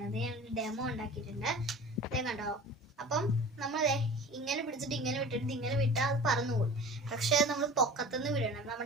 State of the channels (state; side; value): normal; both; correlation 0.39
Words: ഞാൻ ഡെമോ ഉണ്ടാക്കിയിട്ടുണ്ട്, അതേ കണ്ടോ. അപ്പം നമ്മൾ ഇങ്ങനെ പിടിച്ചിട്ട് ഇങ്ങനെ വിട്ടിട്ട് ഇങ്ങനെ വിട്ടാൽ അത് പറന്നു പോകും. പക്ഷെ നമ്മൾ പൊക്കത്തുനിന്ന് വിടണം.